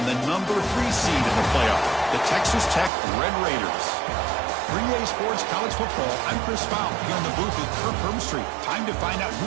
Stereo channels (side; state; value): left; drops out; at 2.9 s